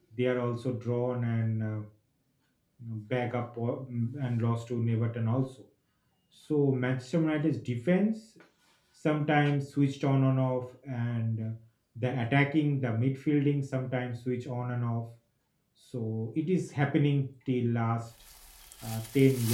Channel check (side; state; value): both; identical; correlation 1.00